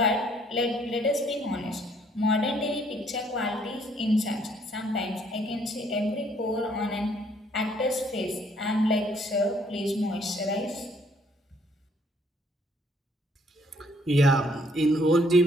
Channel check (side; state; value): both; normal; correlation 0.65